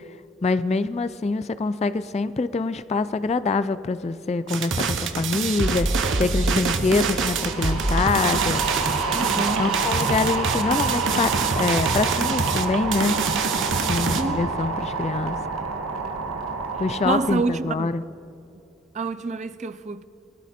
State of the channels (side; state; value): both; normal; correlation 0.50